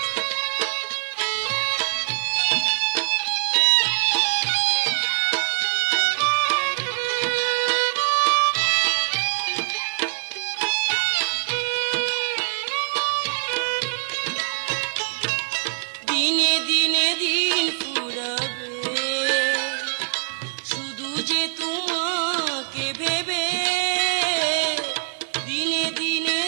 দিনে দিনে দিন ফুরাবে, শুধু যে তোমাকে ভেবে। দিনে দিনে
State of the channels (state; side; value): silent; left; 63 dB below the other